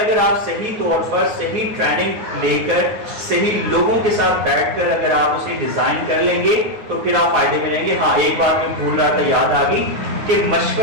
آپ صحیح طور پر صحیح ٹریننگ لے کر صحیح لوگوں کے ساتھ بیٹھ کر اگر آپ اسے ڈیزائن کر لیں گے تو پھر آپ فائدے میں رہیں گے. ہاں ایک بات میں بھول رہا تھا، یاد آ گئی کہ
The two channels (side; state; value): left; late; 9.6 ms